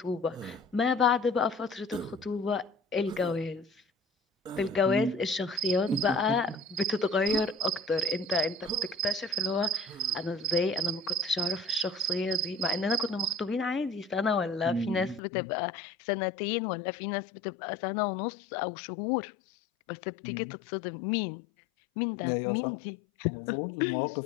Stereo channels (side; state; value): right; drops out; at 15.2 s